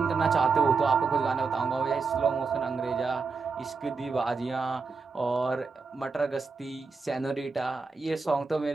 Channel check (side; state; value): left; quieter; 4.6 dB